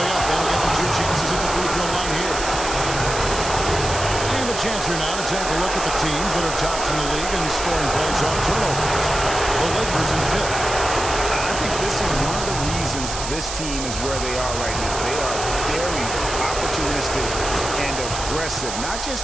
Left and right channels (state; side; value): noise; right; hiss, 6 dB below the sound